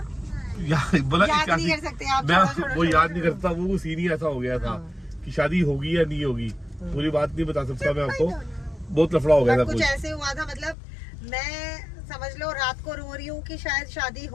याद नहीं कर सकते आप, मैं वो याद नहीं करता, वो सीन ही ऐसा हो गया था कि शादी होगी या नहीं होगी, पूरी बात नहीं बता सकता मैं आपको, बहुत लफड़ा हो गया था। कुछ ऐसे हुआ था, मतलब मैं समझ लो रात को रो रही हूँ कि शायद शादी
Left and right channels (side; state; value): right; drops out; at 10.8 s